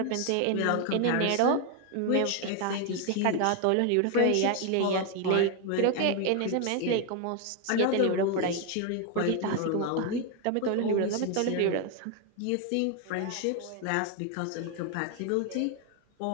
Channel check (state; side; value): different; both; correlation 0.01